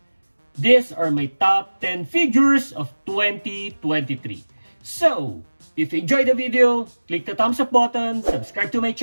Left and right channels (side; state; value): both; inverted; correlation -1.00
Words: These are my top 10 figures of 2023. So, if you enjoyed the video, click the thumbs up button, subscribe to my